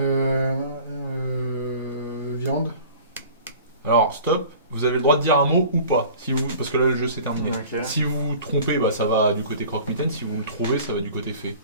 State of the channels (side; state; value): both; inverted; correlation -0.43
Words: Viande. Alors, stop. Vous avez le droit de dire un mot ou pas. Si vous... Parce que là, le jeu s'est terminé. Ok. Si vous vous trompez, bah, ça va du côté croque-mitaine. Si vous le trouvez, ça va du côté fée.